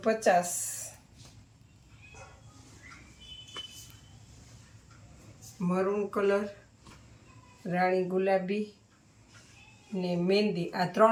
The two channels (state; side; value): identical; both; correlation 1.00